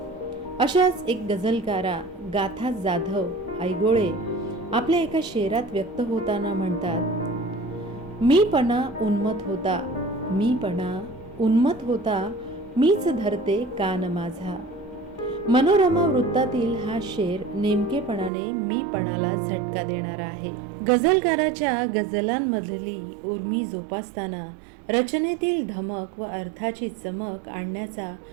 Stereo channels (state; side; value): drops out; left; at 18.3 s